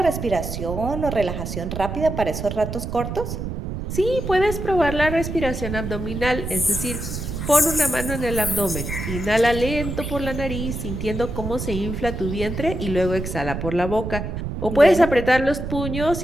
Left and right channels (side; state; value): right; noise; rumble, 5 dB below the sound